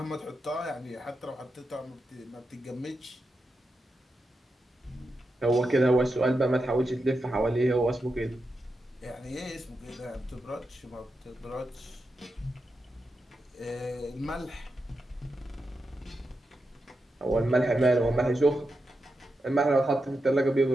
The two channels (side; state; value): both; normal; correlation 0.88